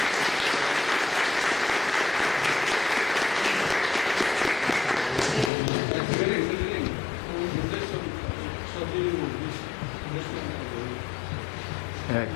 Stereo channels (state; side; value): drops out; right; at 5.5 s